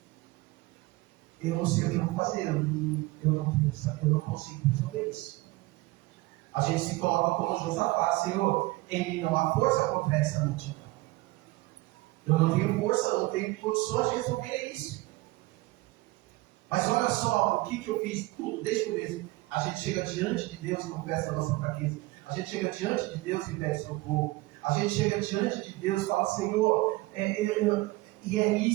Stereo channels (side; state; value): left; quieter; 20.6 dB